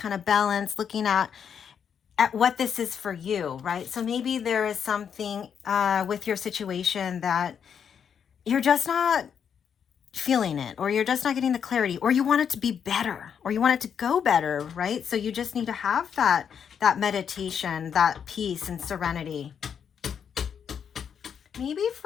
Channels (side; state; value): right; quieter; 7.7 dB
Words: of balance, looking at what this is for you, right? So maybe there is something with your situation that you're just not feeling it, or you're just not getting the clarity, or you want it to be better, or you want it to go better, right? So you just need to have that meditation, that peace and serenity. Maybe